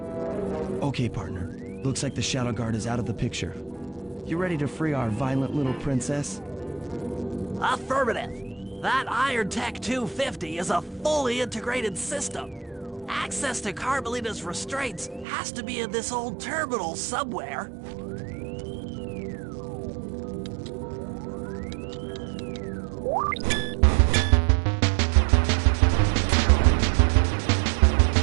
Okay, partner. Looks like the Shadow Guard is out of the picture. You ready to free our violent little princess? Affirmative. That Iron Tech 250 is a fully integrated system. Access to Carmelita's restraints has to be in this old terminal somewhere.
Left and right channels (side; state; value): left; drops out; at 15.2 s